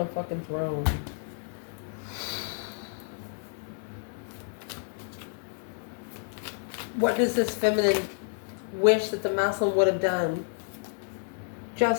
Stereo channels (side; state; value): right; silent; 58 dB below the other